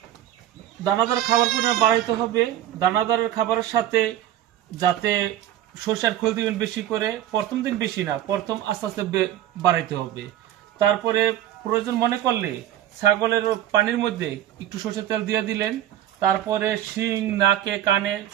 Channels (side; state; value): left; quieter; 12.3 dB